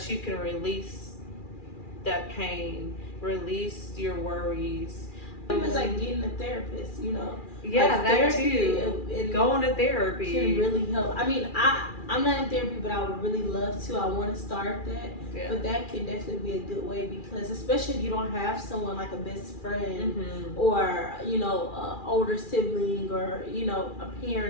you can release that pain, release your worries. It's like getting a therapist, you know. Yeah, like that too. Going to therapy can really help. I mean, I'm not in therapy, but I would really love to. I want to start that. Yeah. But that can definitely be a good way, because especially if you don't have someone like a best friend or, you know, an older sibling or, you know, a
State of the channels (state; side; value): late; right; 2.4 ms